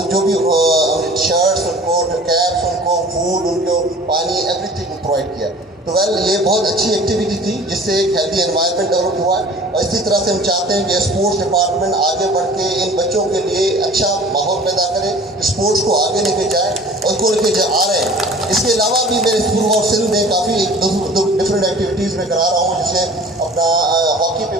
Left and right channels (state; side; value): normal; both; correlation 0.45